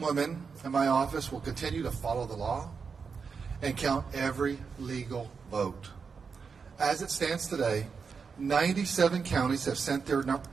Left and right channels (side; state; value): left; quieter; 5.5 dB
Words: women in my office will continue to follow the law and count every legal vote. As it stands today, 97 counties have sent their